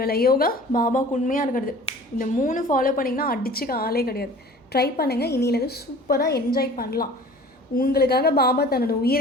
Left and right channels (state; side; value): normal; both; correlation 0.45